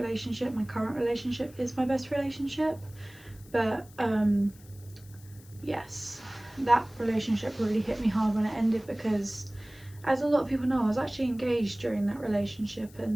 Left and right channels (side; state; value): left; noise; hiss, 24 dB below the sound